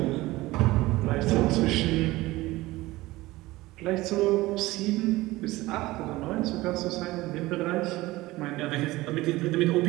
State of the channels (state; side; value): quieter; left; 19.1 dB